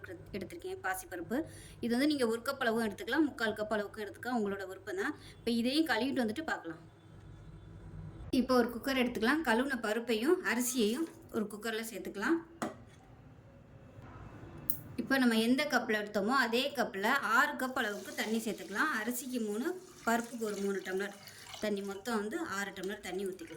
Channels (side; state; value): both; identical; correlation 1.00